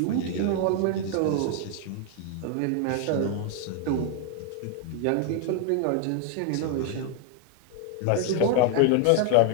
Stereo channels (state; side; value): different; both; correlation 0.01